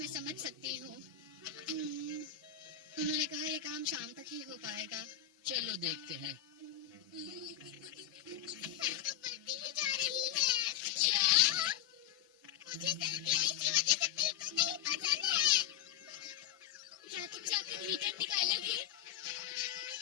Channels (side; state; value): right; quieter; 10.7 dB